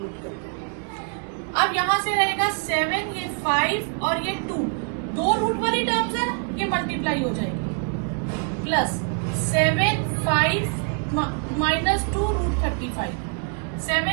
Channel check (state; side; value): quieter; left; 37.6 dB